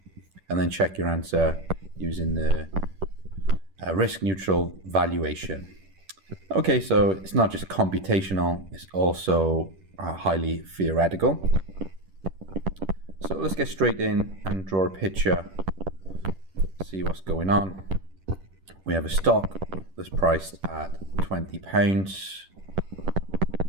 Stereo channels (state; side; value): late; left; 10 ms